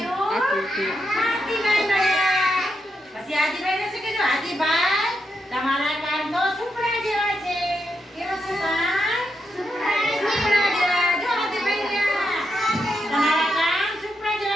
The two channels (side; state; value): both; normal; correlation 0.83